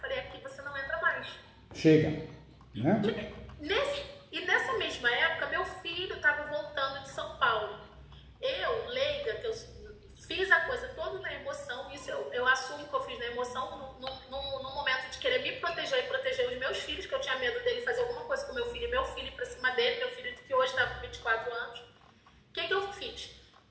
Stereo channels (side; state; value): both; identical; correlation 1.00